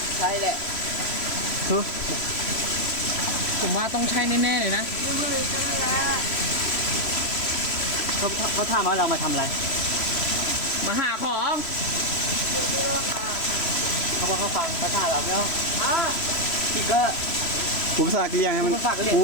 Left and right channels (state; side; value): late; right; 3.1 ms